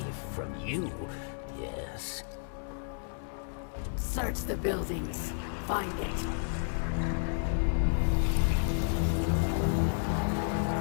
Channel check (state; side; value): silent; right; 57 dB below the other